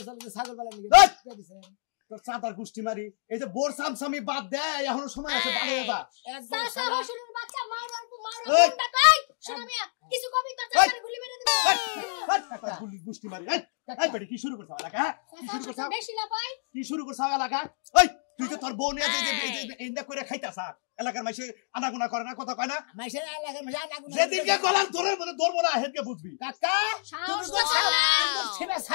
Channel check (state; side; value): silent; right; digital silence